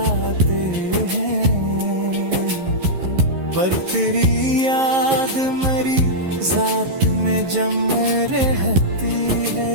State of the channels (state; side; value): late; left; 11 ms